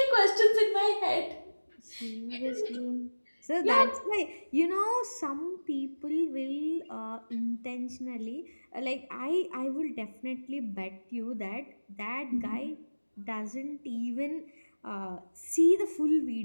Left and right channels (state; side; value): inverted; both; correlation -1.00